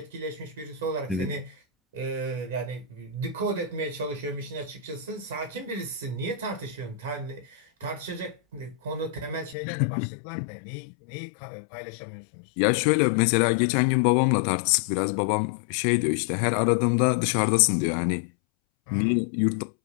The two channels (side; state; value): right; drops out; at 9.6 s